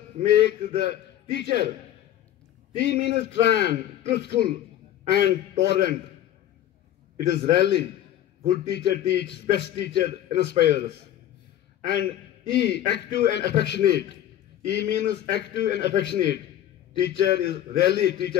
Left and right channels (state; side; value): quieter; right; 12.0 dB